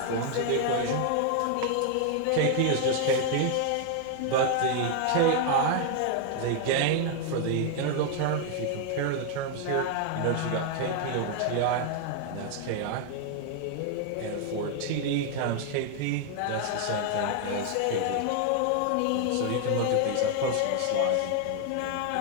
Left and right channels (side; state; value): both; different; correlation 0.00